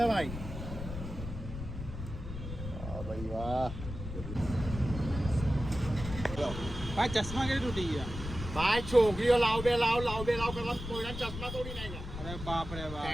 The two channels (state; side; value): noise; left; rumble, 8 dB below the sound